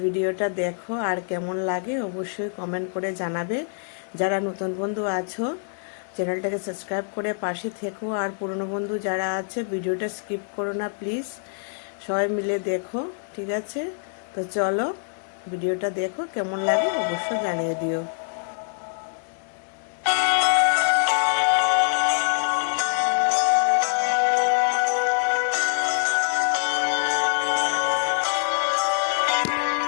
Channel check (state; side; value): silent; right; digital silence